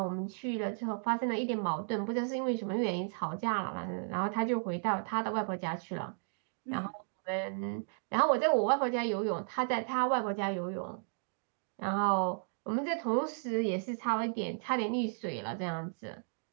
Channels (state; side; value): silent; left; digital silence